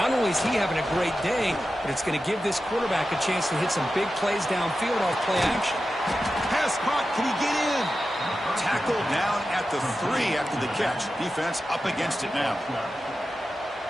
only is he having a great day, but it's going to give this quarterback a chance to hit some big plays downfield off play action. Pass caught. Can he get in? Tackled down at the 3 after the catch. Defense up against it now.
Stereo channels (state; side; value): normal; both; correlation 0.92